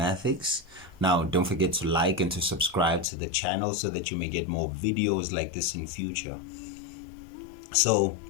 Now, don't forget to like and to subscribe to the channel so that you may get more videos like this in future. So,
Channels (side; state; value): right; drops out; at 3.1 s